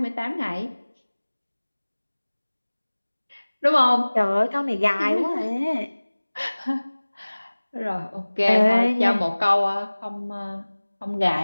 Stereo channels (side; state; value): both; inverted; correlation -1.00